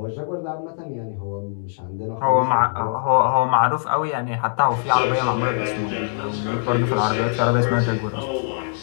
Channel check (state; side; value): silent; right; digital silence